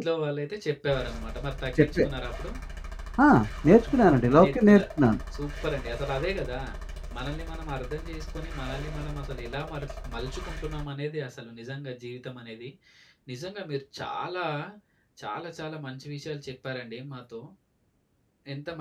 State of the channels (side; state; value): both; identical; correlation 1.00